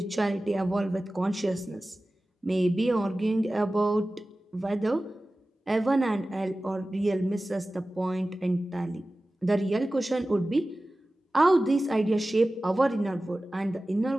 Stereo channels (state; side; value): normal; both; correlation 0.96